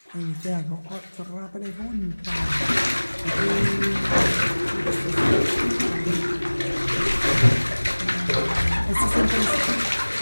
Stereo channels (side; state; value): both; inverted; correlation -1.00